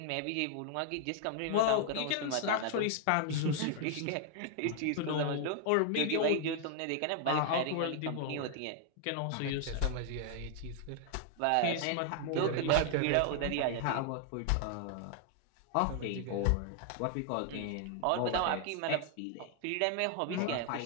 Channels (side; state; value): both; different; correlation 0.00